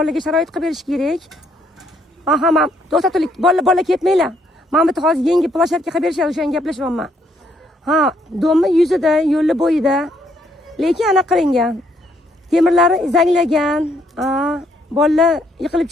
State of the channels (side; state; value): both; normal; correlation 0.70